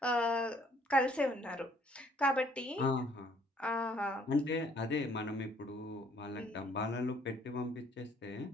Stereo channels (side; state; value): both; normal; correlation 0.62